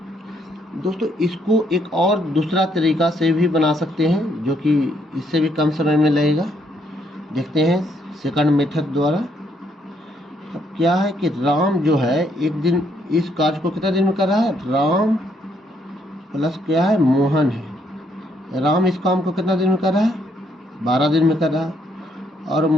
दोस्तों इसको एक और दूसरा तरीका से भी बना सकते हैं, जो कि इससे भी कम समय में लगेगा। देखते हैं सेकंड मेथड द्वारा। अब क्या है कि राम जो है एक दिन इस कार्य को कितना दिन में कर रहा है? राम प्लस क्या है? मोहन है। राम इस काम को कितना दिन में कर रहा है? 12 दिन में कर रहा है। और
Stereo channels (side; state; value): both; normal; correlation 0.72